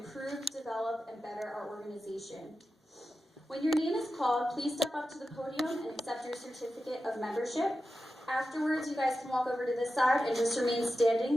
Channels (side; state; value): both; normal; correlation 0.92